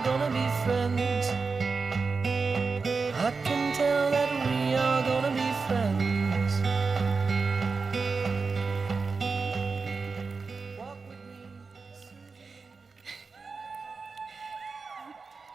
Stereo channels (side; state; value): left; quieter; 4.6 dB